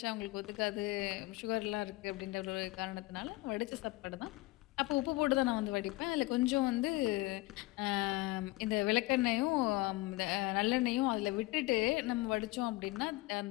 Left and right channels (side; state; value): right; quieter; 20.5 dB